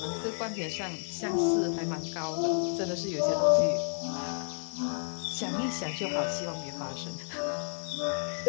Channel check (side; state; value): right; silent; 57 dB below the other